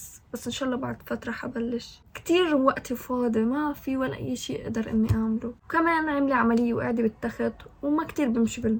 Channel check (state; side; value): identical; both; correlation 1.00